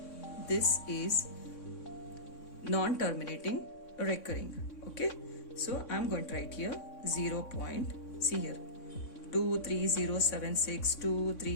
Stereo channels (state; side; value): late; right; 3.6 ms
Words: this is non-terminating recurring. Okay, so I'm going to write here 0 point. See here, 23076,